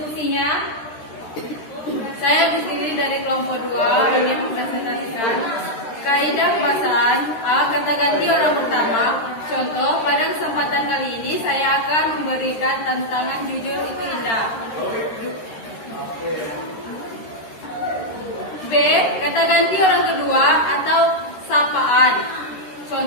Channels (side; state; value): right; late; 13 ms